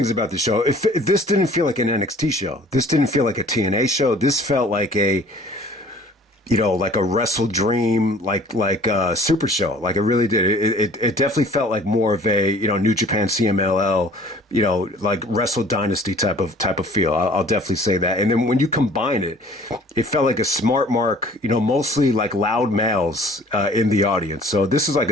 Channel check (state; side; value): normal; both; correlation 0.51